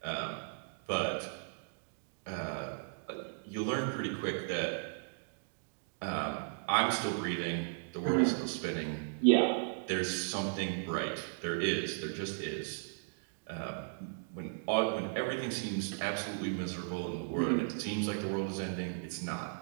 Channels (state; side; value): silent; left; digital silence